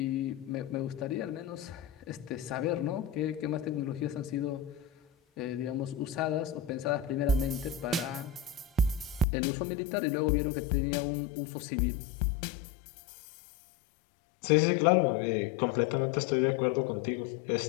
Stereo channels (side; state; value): right; drops out; at 9.2 s